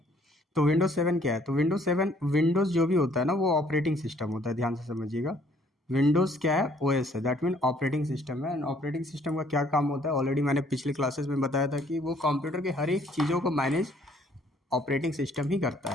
तो विंडोज़ 7 क्या है? तो विंडोज़ 7 विंडोज़ जो भी होता है ना, वो ऑपरेटिंग सिस्टम होता है। ध्यान से समझिएगा, विंडोज़ क्या है? ओएस है, दैट मीन ऑपरेटिंग सिस्टम है। एंड ऑपरेटिंग सिस्टम का क्या काम होता है ऑलरेडी मैंने पिछले क्लासेस में बताया था कि वो कंप्यूटर के हर एक चीज़ों को मैनेज ऑपरेटिंग सिस्टम ही करता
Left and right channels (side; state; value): both; normal; correlation 0.62